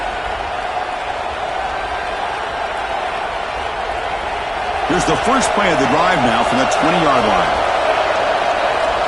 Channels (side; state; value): both; identical; correlation 1.00